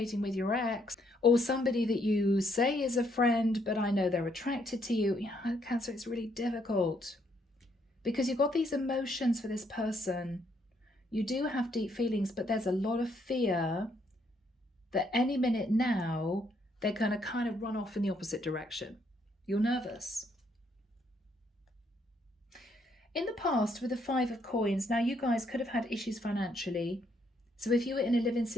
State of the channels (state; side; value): normal; both; correlation 0.72